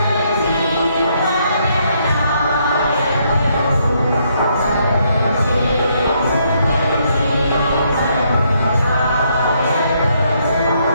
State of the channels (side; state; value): both; inverted; correlation -0.73